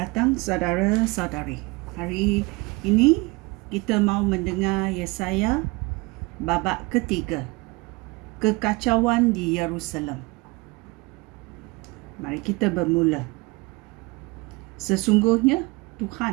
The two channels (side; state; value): left; quieter; 25.0 dB